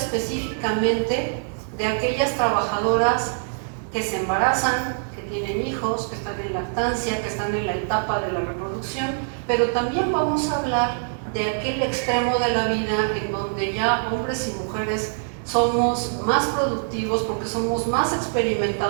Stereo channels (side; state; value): left; silent; 63 dB below the other